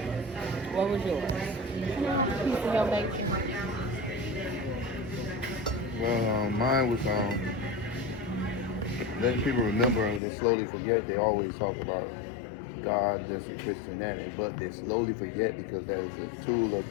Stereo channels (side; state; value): right; drops out; at 10.2 s